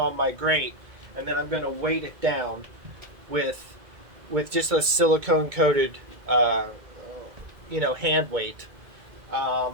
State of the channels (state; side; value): late; left; 2.2 ms